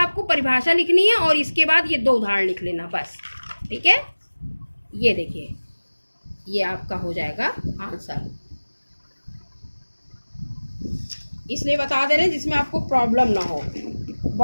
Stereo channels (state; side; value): inverted; both; correlation -1.00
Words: परिभाषा लिखनी है और इसके बाद ये 2 उदाहरण लिख लेना बस, ठीक है। ये देखिए, ये आपका हो जाएगा आंसर, इसलिए बता दे रहे हैं जिसमें आपको प्रॉब्लम ना हो।